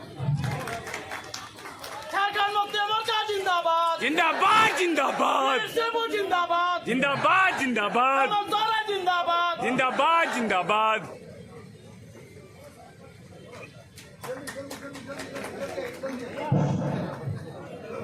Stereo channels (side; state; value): both; identical; correlation 1.00